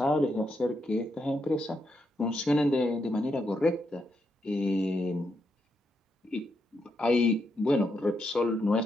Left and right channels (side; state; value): both; normal; correlation 0.81